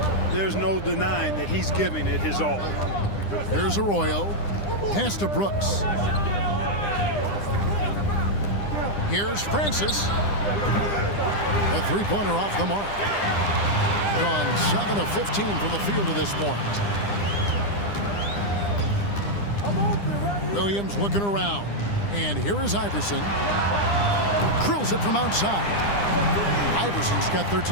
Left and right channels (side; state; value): right; late; 9.9 ms